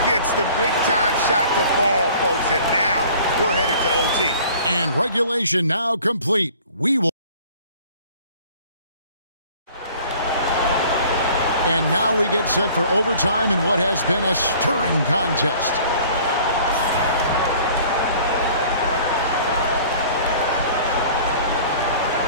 Gets the big-time shot to fall, folks, and now we're headed to OT. And regulation now complete. We will. And now we get set for overtime in what has been a stirring contest.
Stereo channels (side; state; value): both; inverted; correlation -0.50